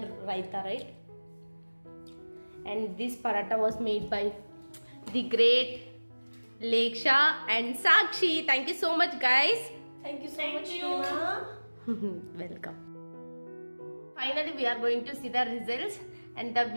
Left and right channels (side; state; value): both; inverted; correlation -1.00